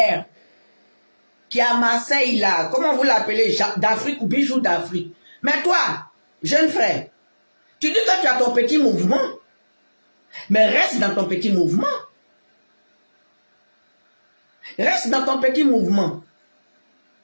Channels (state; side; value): inverted; both; correlation -1.00